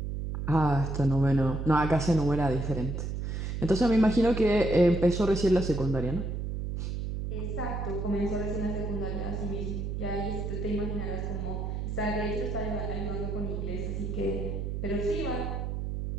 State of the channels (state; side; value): noise; right; hum, 3 dB below the sound